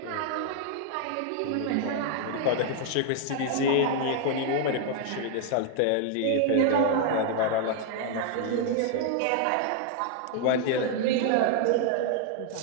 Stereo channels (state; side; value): different; both; correlation 0.00